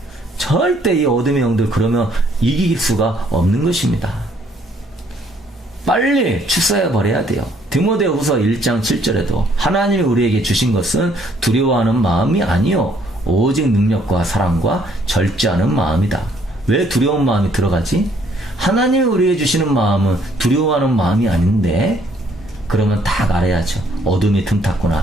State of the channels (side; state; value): both; normal; correlation 0.65